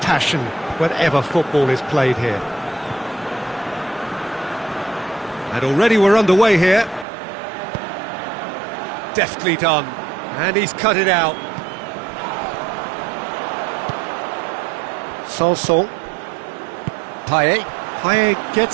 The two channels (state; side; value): drops out; left; at 7.1 s